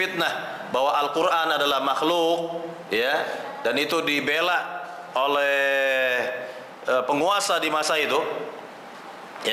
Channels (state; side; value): identical; both; correlation 1.00